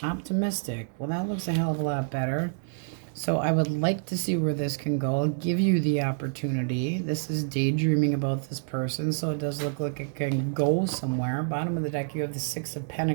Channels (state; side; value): silent; left; digital silence